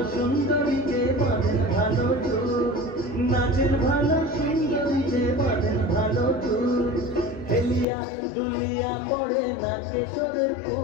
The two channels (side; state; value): right; drops out; at 7.9 s